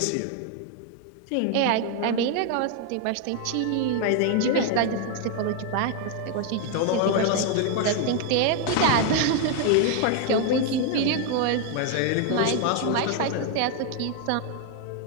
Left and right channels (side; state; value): both; different; correlation 0.01